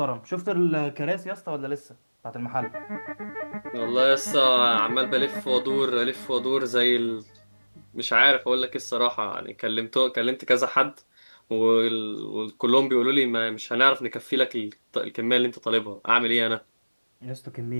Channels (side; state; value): both; inverted; correlation -1.00